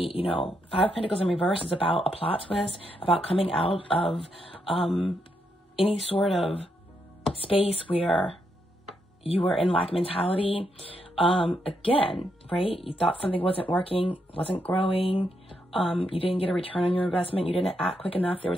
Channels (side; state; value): both; normal; correlation 0.80